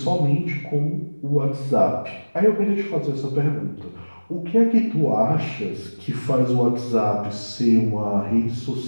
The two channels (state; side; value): inverted; both; correlation -1.00